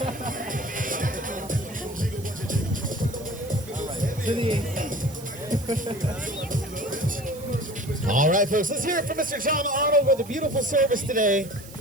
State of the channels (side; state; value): right; noise; hiss, 18 dB below the sound